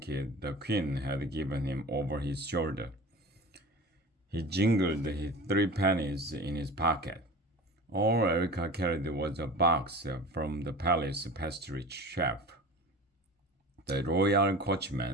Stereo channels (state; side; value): normal; both; correlation 0.35